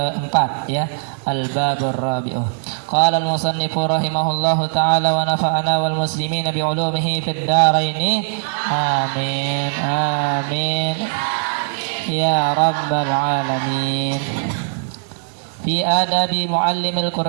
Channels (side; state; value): left; silent; digital silence